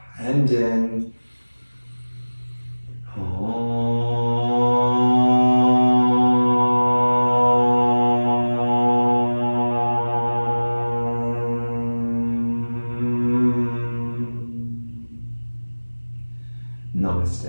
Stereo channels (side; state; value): both; inverted; correlation -1.00